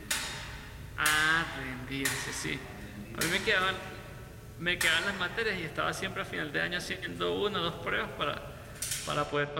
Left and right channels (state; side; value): identical; both; correlation 1.00